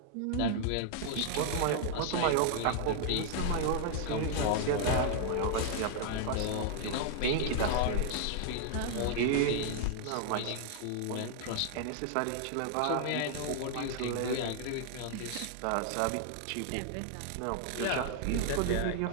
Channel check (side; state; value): both; different; correlation 0.00